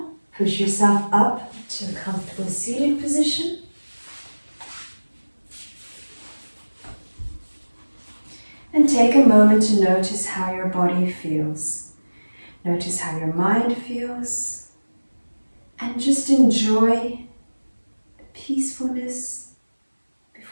push yourself up to a comfortable seated position. And take a moment to notice how your body feels. Notice how your mind feels. And just enjoy the peacefulness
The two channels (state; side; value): inverted; both; correlation -1.00